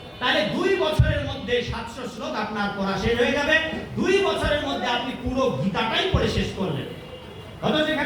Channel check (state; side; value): identical; both; correlation 1.00